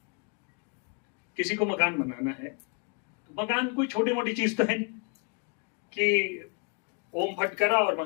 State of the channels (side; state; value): right; quieter; 34.5 dB